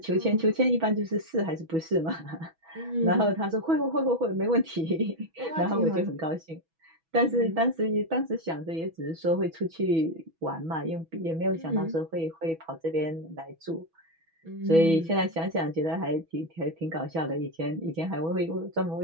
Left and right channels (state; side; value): late; left; 6.1 ms